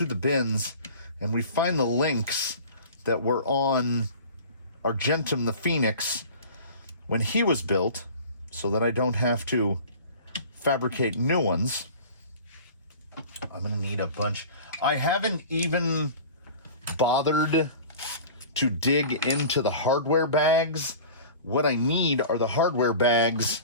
the bins and we find the links that were on Argentum the Phoenix when he was built, so that I don't have to fabricate new ones. I'm gonna need a bunch. I haven't even bothered to dig into the hardware bags. What I need are the hardware bags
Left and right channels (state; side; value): inverted; both; correlation -0.40